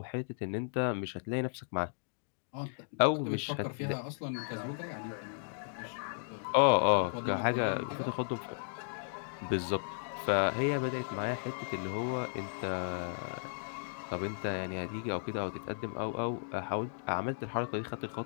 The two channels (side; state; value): right; silent; digital silence